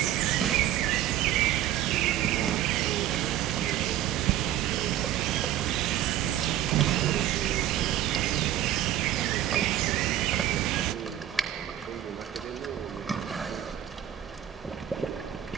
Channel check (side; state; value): left; quieter; 12.0 dB